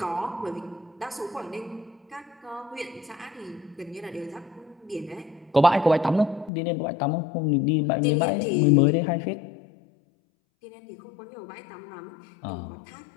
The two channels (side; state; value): right; drops out; at 6.5 s